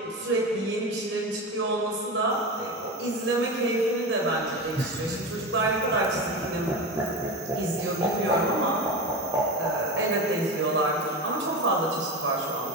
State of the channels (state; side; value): normal; both; correlation 0.23